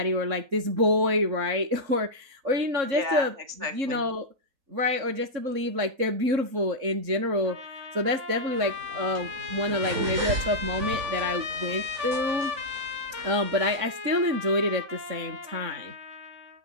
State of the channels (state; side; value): late; left; 3.7 ms